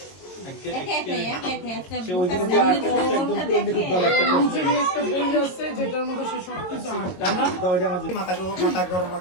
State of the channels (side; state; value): right; late; 22 ms